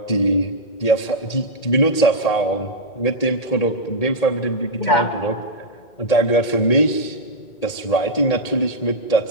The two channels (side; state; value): right; late; 2.2 ms